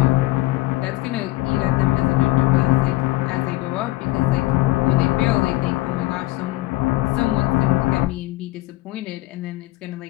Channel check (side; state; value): right; quieter; 18.2 dB